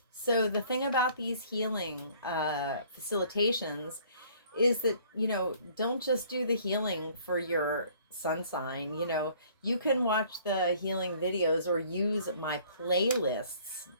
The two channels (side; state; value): both; inverted; correlation -0.56